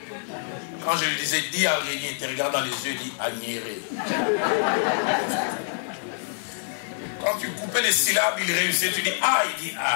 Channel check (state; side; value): silent; right; 61 dB below the other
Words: Quand je lui disais, dis araignée, il te regarde dans les yeux, il dit agnéré. Quand tu coupais les syllabes, il réussissait, tu dis ah, il dit